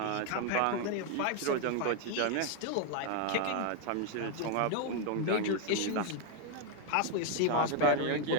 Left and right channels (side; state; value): both; different; correlation 0.01